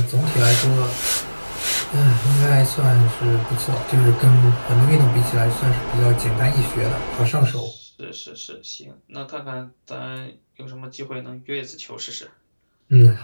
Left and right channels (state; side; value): inverted; both; correlation -1.00